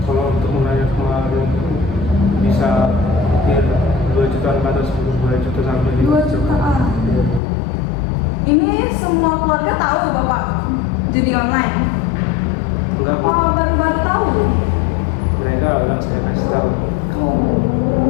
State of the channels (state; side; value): drops out; right; at 7.4 s